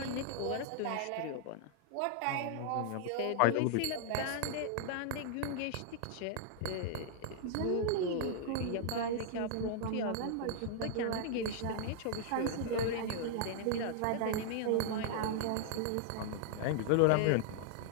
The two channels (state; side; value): different; both; correlation -0.01